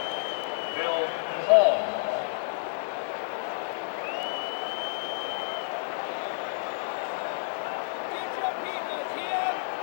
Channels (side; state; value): right; silent; 58 dB below the other